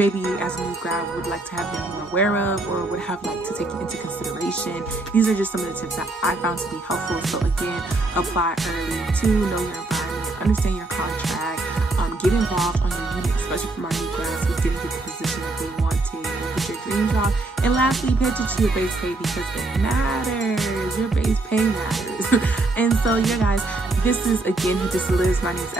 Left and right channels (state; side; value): quieter; left; 3.0 dB